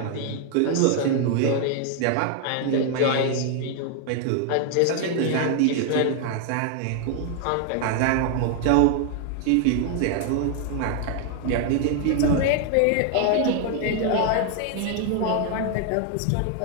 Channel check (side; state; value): both; different; correlation 0.00